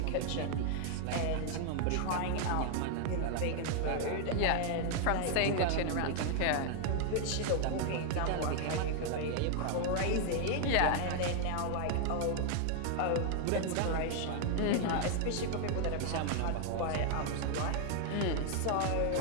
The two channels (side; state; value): both; different; correlation 0.00